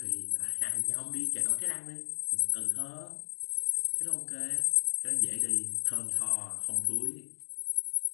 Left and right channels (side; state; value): right; silent; 56 dB below the other